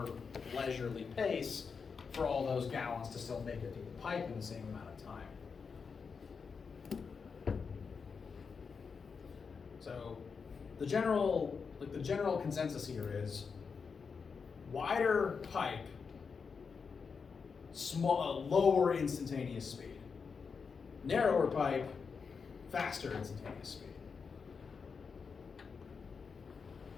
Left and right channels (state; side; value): quieter; right; 5.5 dB